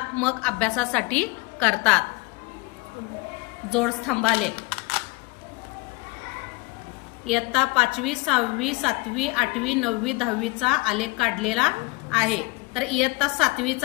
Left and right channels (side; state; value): right; quieter; 25.2 dB